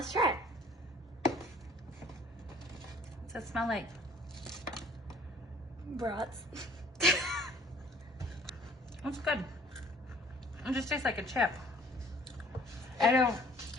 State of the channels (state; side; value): normal; both; correlation 0.54